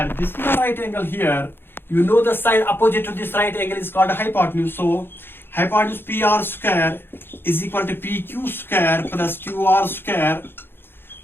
this is the right angle here. You know the side opposite to this right angle is called hypotenuse. So hypotenuse PR square is equal to PQ square plus QR square.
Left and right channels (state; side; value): late; right; 0.10 ms